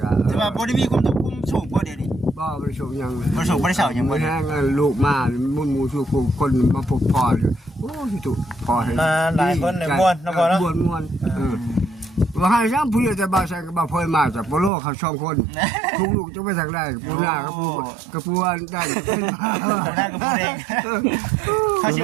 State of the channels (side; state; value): left; drops out; at 14.7 s